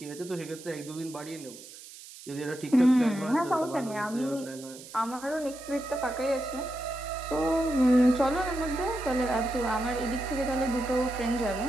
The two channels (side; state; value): right; noise; hiss, 17 dB below the sound